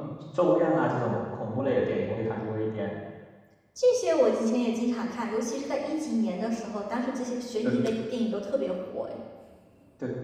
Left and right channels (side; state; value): both; identical; correlation 1.00